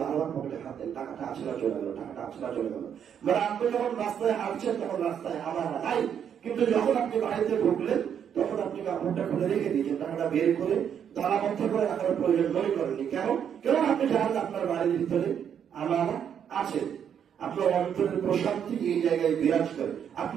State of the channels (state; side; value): quieter; left; 8.4 dB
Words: বারবার পকেটে হাত দেন, টাকাটা আছে না চলে গেল, টাকাটা আছে না চলে গেল। মানে আপনি যখন রাস্তায় হাঁটছেন তখন রাস্তায় আমার নাই, কিন্তু যখন আপনি বাড়িতে ঢুকলেন তখন আপনি কাপড়টা খুলে রেখে দিয়েছেন, টাকাটা বের করে তালাবদ্ধ করে রাখার প্রয়োজন মনে করেননি। কেন আপনি জানেন আপনার বাড়ির ভিতরে আমার আছে। আপনার অন্তরের প্রশান্তি এই জায়গায় বিরাজ করে,